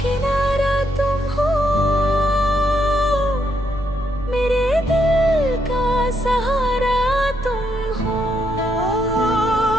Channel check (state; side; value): noise; right; rumble, 14 dB below the sound